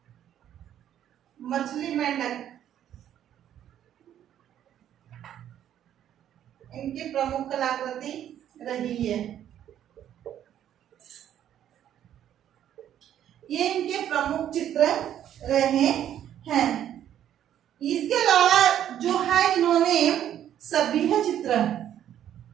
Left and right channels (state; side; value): quieter; left; 10.7 dB